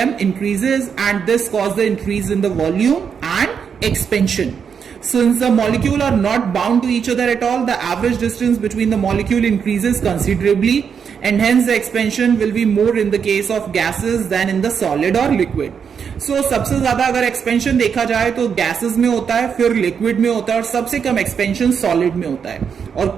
increases, and this causes the increase in the volume and expansion. Since the molecule are not bound to each other at all, the average distance between the molecule increases considerably, and hence the expansion will be more in the case of gases than in the solid or liquid. So सबसे ज्यादा अगर expansion देखा जाए तो gases में होता है, फिर लिक्विड में होता है, और सबसे कम एक्सपेंशन सॉलिड में होता है. और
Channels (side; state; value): left; quieter; 6.9 dB